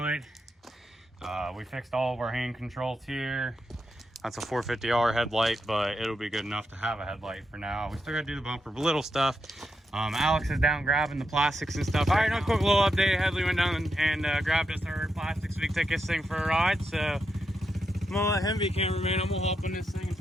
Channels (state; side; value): normal; both; correlation 0.85